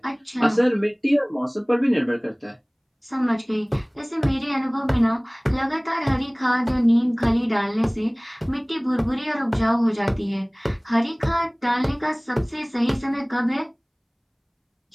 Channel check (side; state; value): both; identical; correlation 1.00